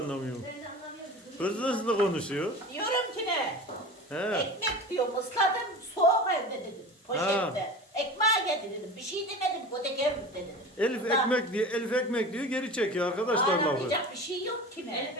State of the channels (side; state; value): both; normal; correlation 0.34